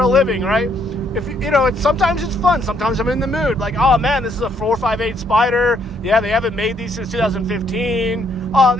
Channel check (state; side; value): normal; both; correlation 0.70